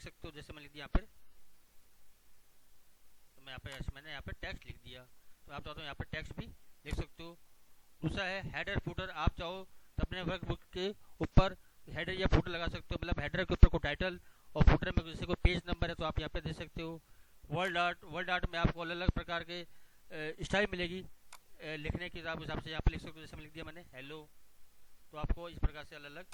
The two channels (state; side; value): identical; both; correlation 1.00